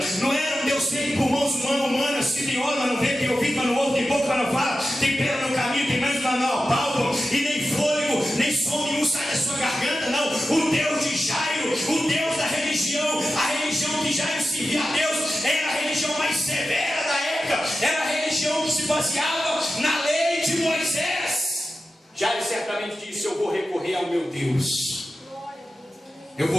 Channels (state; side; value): normal; both; correlation 0.92